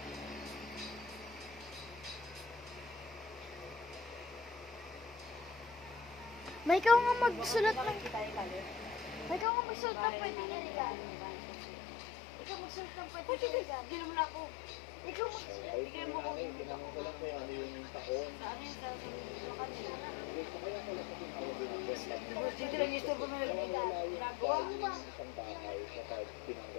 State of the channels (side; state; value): right; drops out; at 9.5 s